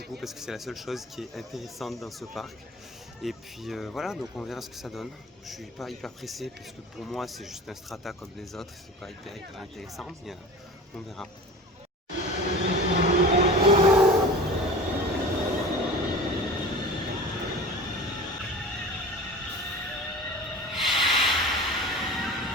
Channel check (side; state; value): both; normal; correlation 0.36